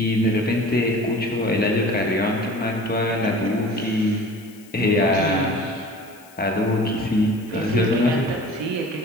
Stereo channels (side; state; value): left; noise; hiss, 25 dB below the sound